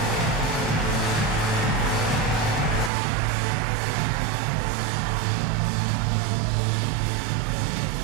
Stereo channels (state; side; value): drops out; left; at 2.9 s